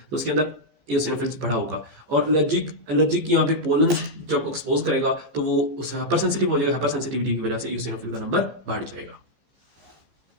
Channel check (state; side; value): late; left; 15 ms